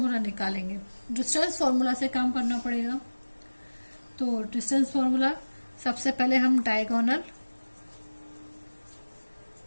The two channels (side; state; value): both; inverted; correlation -1.00